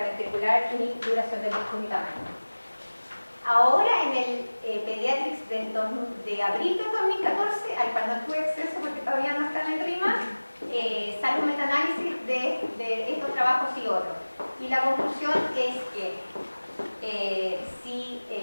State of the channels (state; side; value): inverted; both; correlation -1.00